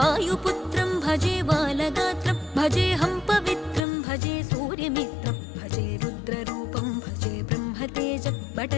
भजे बालगात्रं भजेऽहं पवित्रं भजे सूर्यमित्रं भजे रुद्ररूपं भजे ब्रह्मतेजं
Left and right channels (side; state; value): right; drops out; at 3.8 s